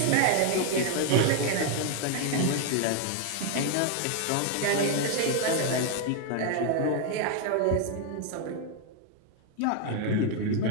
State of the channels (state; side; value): different; both; correlation 0.00